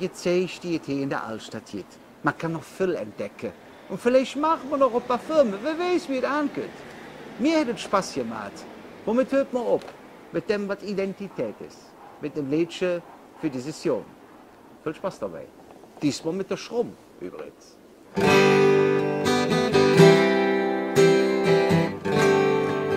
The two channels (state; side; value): identical; both; correlation 1.00